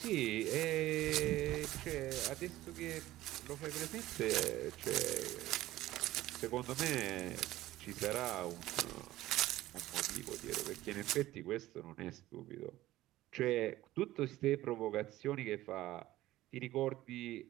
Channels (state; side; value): quieter; left; 15.8 dB